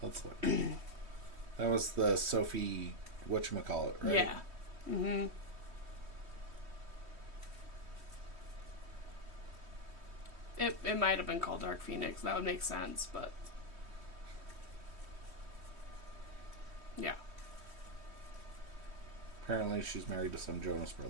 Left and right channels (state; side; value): late; left; 3.1 ms